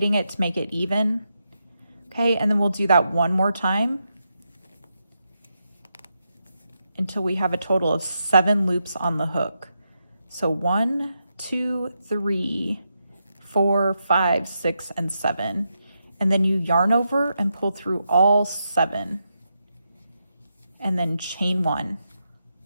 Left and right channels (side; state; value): both; inverted; correlation -0.85